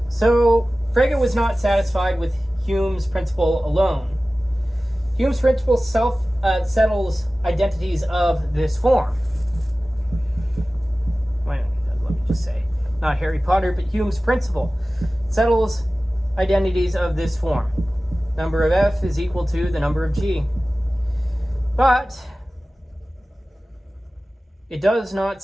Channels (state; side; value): normal; both; correlation 0.96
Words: So Frege was not satisfied with Hume's principle alone. Hume's principle settles identities of this form. Let me just say, not Harry Potter, but Hume's principle settles identities of this form. Number of F is equal to the number of G. But it does not